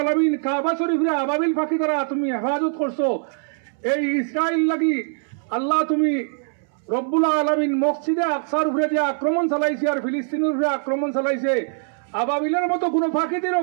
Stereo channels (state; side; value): silent; left; 64 dB below the other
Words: কাবা শরীফে আবাবিল পাখি দ্বারা তুমি হেফাজত করছো, এই ইসরায়েল লাগি আল্লাহ তুমি রব্বুল আলামিন মসজিদে আকসার উপরে যে আক্রমণ চালাইছে আর ফিলিস্তিনের উপরে আক্রমণ চালাইছে, আবাবিলের মতো কোনো ফাঁকিতে